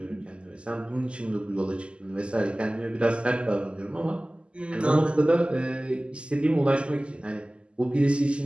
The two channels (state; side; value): late; left; 0.053 ms